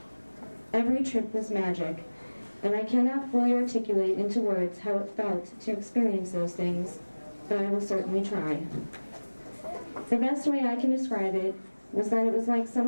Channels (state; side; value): inverted; both; correlation -1.00